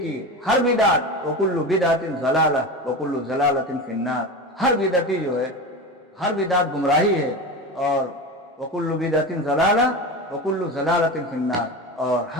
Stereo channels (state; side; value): normal; both; correlation 0.25